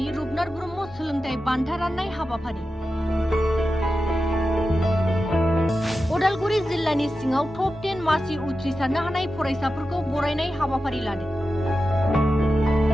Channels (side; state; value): both; normal; correlation 0.91